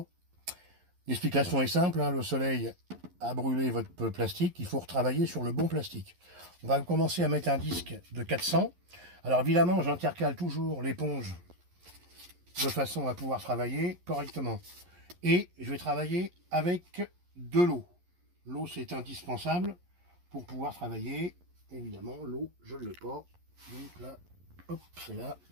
L'explication est simple, hein, le soleil a brûlé votre plastique, il faut retravailler sur le bon plastique. On va commencer à mettre un disque de 400. Alors évidemment j'intercale toujours l'éponge de façon à pouvoir travailler correctement. Et je vais travailler avec de l'eau. L'eau c'est indispensable pour pouvoir travailler. Évidemment l'eau je ne l'ai pas. Donc là, hop, c'est là.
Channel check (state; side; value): late; left; 11 ms